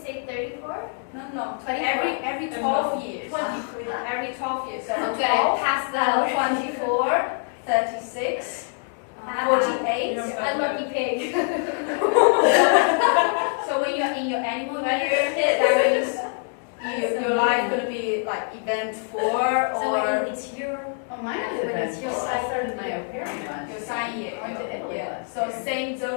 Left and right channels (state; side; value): silent; right; 55 dB below the other